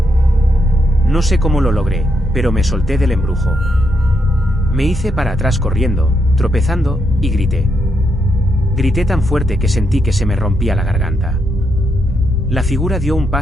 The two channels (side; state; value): both; normal; correlation 0.80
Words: No sé cómo lo logré, pero me solté del embrujo. Me hice para atrás corriendo, tropezando, y grité. Grité tan fuerte que sentí que se me rompía la garganta. La figura dio un